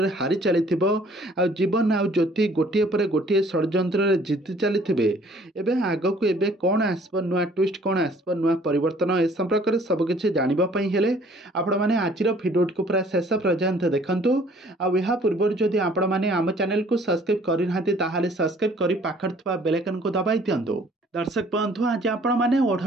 हारी चली जीवन आउ ज्योति गोटे पर गोटे षड्यंत्र जीति चली आगक एबे कौन आसब नुआ ट्विस्ट कौन आसब नुआ परिवर्तन ए संपर्क में सबकिछि जानिबापई हेले आपण माने आजिर भिडियो को पूरा शेष पर्यंत देखंतु आ या पूर्व जदि आपण माने आम चैनल को सब्सक्राइब करि नाहंती ताहाले सब्सक्राइब करि पाखर थवा बेल आइकन को दबाई दियंतु। दर्शक बंधु आज आपण मैंने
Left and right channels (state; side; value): normal; both; correlation 0.57